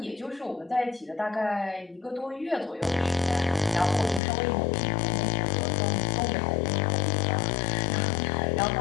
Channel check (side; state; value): right; drops out; at 4.2 s